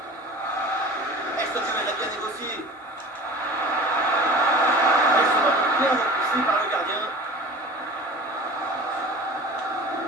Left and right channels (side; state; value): both; normal; correlation 0.40